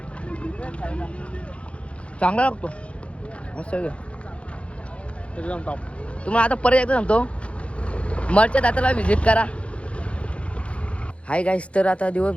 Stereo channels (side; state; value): right; late; 0.061 ms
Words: चांगला लागतो मस्त. तुम्हाला आता परत एकदा सांगतो, मरच्या दाताला व्हिजिट करा. हाय गाईस, तर आता